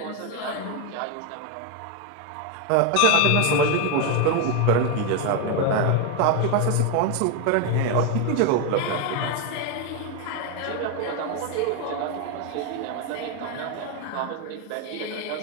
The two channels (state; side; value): different; both; correlation 0.02